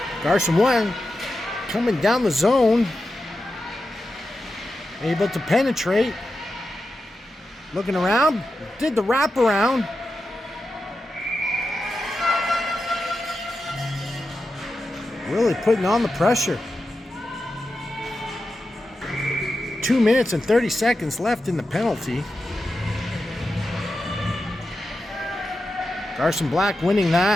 Garson White coming down the zone. Able to penetrate. Looking around, did the wraparound. Really putting on the pressure. 2 minutes and 30 seconds left in the penalty. Garson Black winning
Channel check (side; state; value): both; normal; correlation 0.90